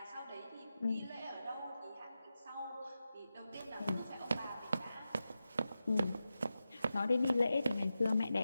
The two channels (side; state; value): both; inverted; correlation -0.91